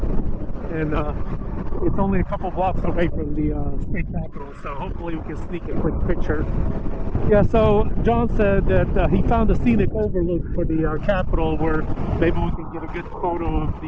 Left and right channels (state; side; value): identical; both; correlation 1.00